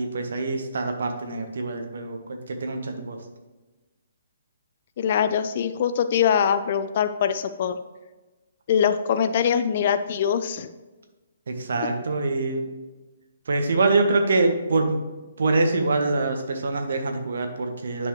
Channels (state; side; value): inverted; both; correlation -0.67